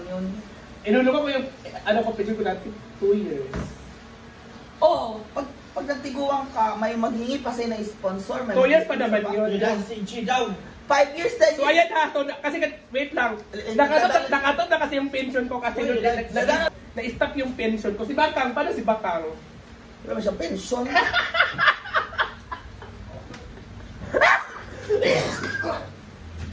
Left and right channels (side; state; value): both; identical; correlation 1.00